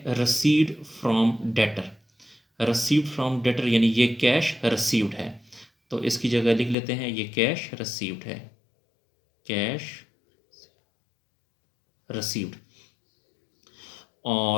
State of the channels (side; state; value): right; drops out; at 6.8 s